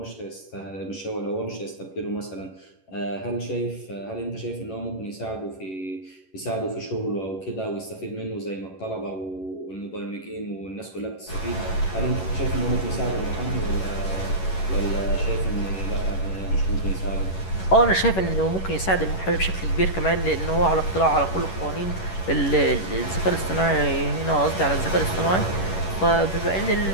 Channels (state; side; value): late; right; 11 ms